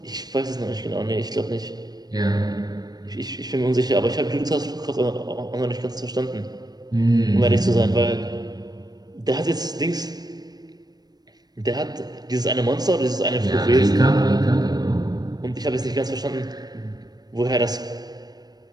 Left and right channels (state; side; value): late; left; 0.19 ms